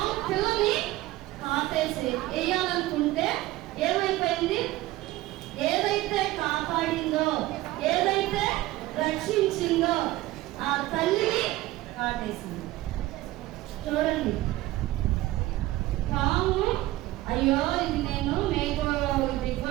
పిల్లని కాటేసి వేయాలనుకుంటే ఏమైపోయింది, ఏదైతే కాపాడిందో, ఏదైతే రక్షించిందో ఆ తల్లిని కాటేసింది. చూడండి, పాము అయ్యో ఇది నేను మేకు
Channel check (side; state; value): left; quieter; 17.3 dB